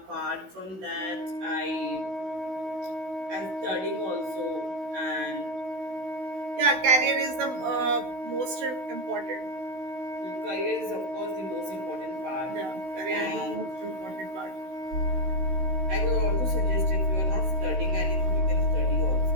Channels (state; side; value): late; left; 16 ms